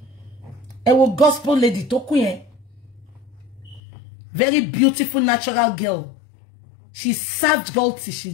ẹ wo gospel lady tó kú yẹn very beautiful natural girl she served God till she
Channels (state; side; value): drops out; right; at 3.8 s